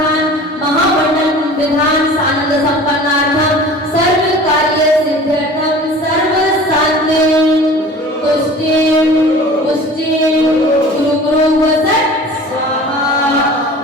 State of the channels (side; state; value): both; normal; correlation 0.42